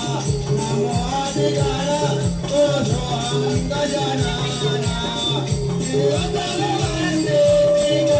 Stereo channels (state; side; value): identical; both; correlation 1.00